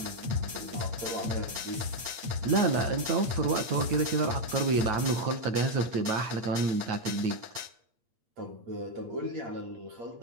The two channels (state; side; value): late; left; 8.7 ms